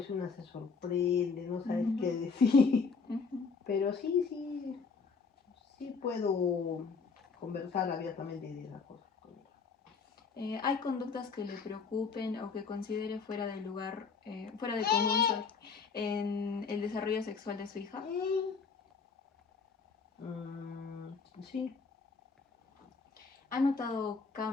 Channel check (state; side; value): quieter; right; 5.1 dB